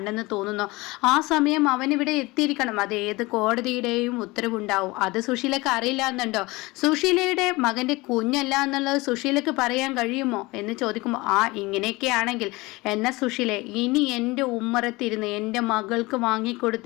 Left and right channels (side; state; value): right; quieter; 22.4 dB